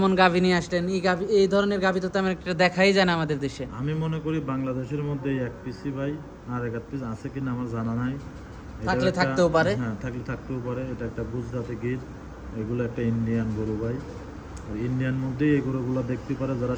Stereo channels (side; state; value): both; identical; correlation 1.00